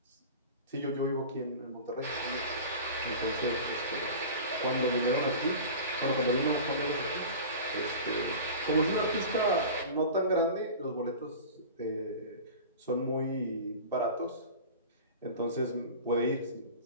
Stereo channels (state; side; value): inverted; both; correlation -0.35